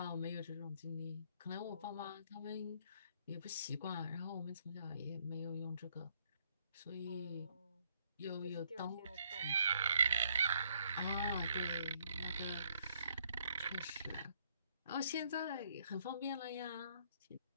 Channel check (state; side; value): inverted; both; correlation -0.68